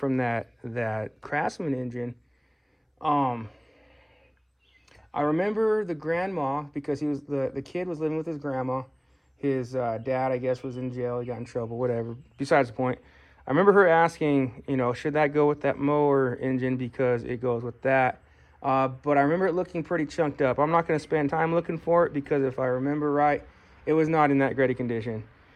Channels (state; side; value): identical; both; correlation 1.00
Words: that Craftsman engine. I remember the grandma, because he was the kid was living with his grandma. His dad, I guess, was in jail. He got in trouble, whatever. Besides the point. I remember her asking, you know, should that go with that mower engine because it goes with that. But I remember it looking pretty chunked up. I'm not going to spend time looking for it because if I remember right, it was not in that great a condition.